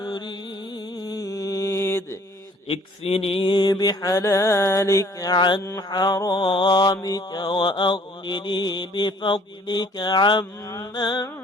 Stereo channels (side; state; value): both; normal; correlation 0.57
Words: اكفني بحلالك عن حرامك وأغنني بفضلك عمن